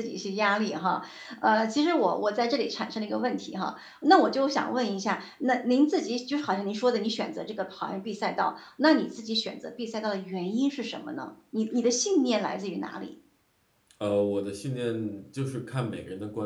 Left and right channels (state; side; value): identical; both; correlation 1.00